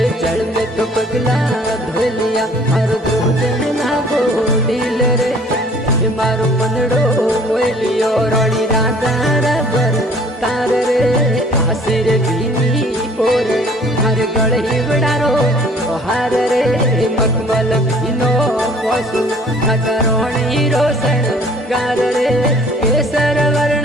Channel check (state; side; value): normal; both; correlation 0.54